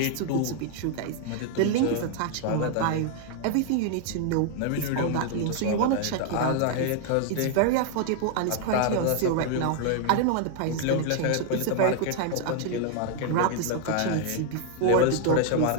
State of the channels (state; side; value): different; both; correlation 0.00